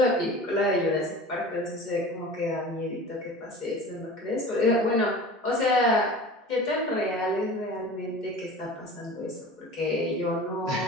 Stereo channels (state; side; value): normal; both; correlation 0.38